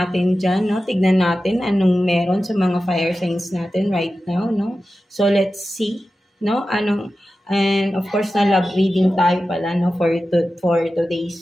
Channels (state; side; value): normal; both; correlation 0.93